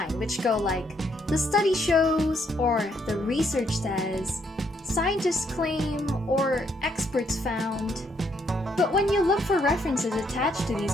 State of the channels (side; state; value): both; normal; correlation 0.72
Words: which go like, "the study shows," or "the research says," "scientists claim," or "experts found." But when you look for references attached to these